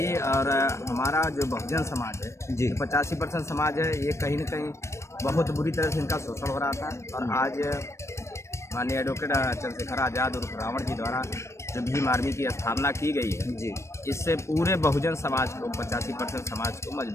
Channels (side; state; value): right; late; 0.13 ms